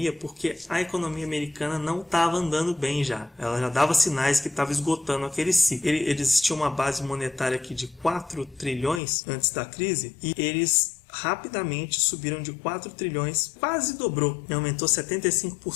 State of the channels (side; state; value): right; drops out; at 9.0 s